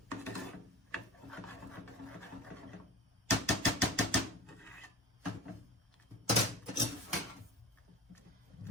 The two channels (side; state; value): both; normal; correlation 0.33